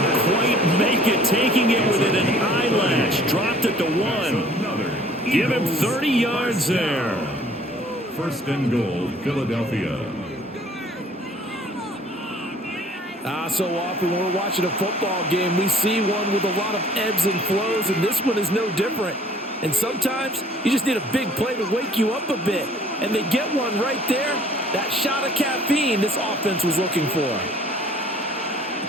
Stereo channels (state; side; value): normal; both; correlation 0.54